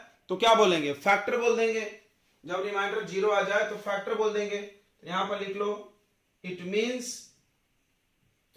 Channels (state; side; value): identical; both; correlation 1.00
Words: तो क्या बोलेंगे, फैक्टर बोल देंगे। जब रिमाइंडर 0 आ जाए तो फैक्टर बोल देंगे। तो यहां पर लिख लो, इट मींस,